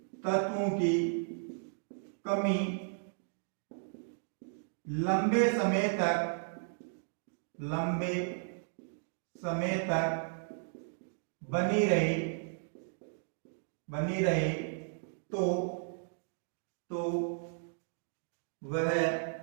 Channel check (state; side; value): silent; left; digital silence